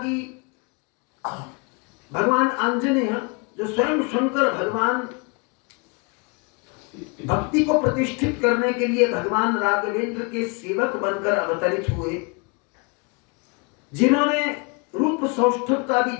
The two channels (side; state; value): right; quieter; 31.6 dB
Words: भगवान आंजनेय जो स्वयं शंकर भगवान भक्ति को प्रतिष्ठित करने के लिए भगवान राघवेंद्र के सेवक बनकर अवतरित हुए, जिन्होंने रूप सौष्ठव का भी